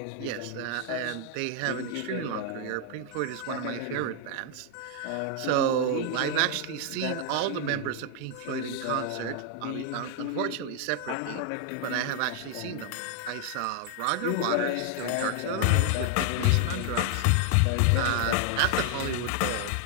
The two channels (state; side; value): different; both; correlation 0.00